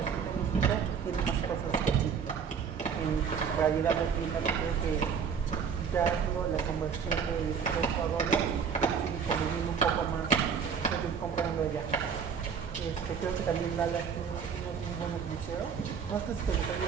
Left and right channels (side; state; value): left; quieter; 6.7 dB